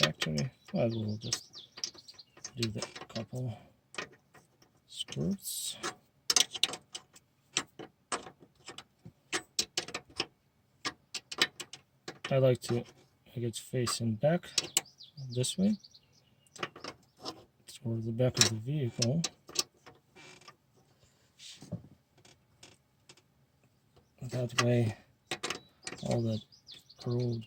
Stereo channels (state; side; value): identical; both; correlation 1.00